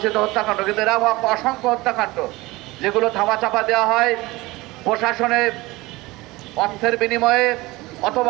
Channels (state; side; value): quieter; left; 20.8 dB